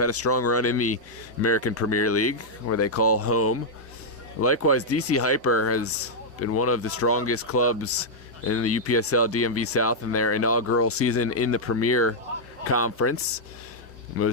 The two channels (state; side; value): normal; both; correlation -0.05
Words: a strong run in the American Premier League, where they call home. Likewise, DC Hyper has been one of the strongest clubs in the UPSL DMV South in their inaugural season in the Premier Conference.